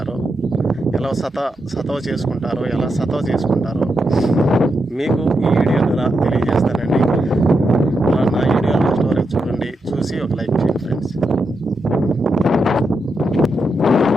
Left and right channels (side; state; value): both; normal; correlation 0.85